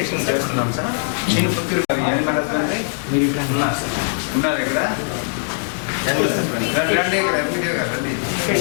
చేస్తున్నాం సార్. నేను మీరు ఇక్కడ ఉన్నారు ఇక్కడ రండి.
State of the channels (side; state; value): right; silent; 65 dB below the other